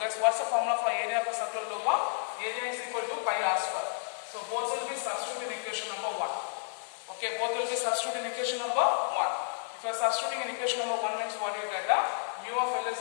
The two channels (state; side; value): silent; right; digital silence